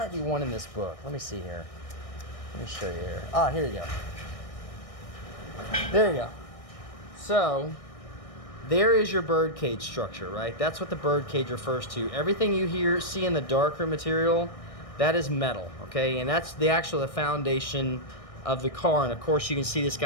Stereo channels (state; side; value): late; right; 1.6 ms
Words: be one in this book. Let me see here. Let me show you here. Ah, here you go. There you go. So there is your bird cage structure, right? That's what the bird cage refers to. Everything you see in the darker material, that is metal, okay? And that's the foundation of the car. And of course, you can see this